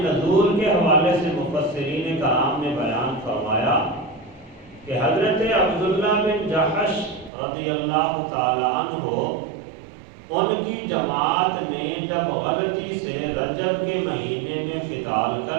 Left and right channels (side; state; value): left; drops out; at 7.3 s